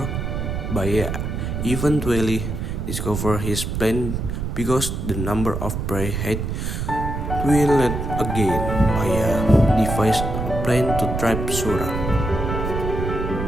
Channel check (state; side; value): noise; right; rumble, 3 dB below the sound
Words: Baya eventually discovered his plan because the number of prey had dwindled again. Baya devised a plan to trap Sura.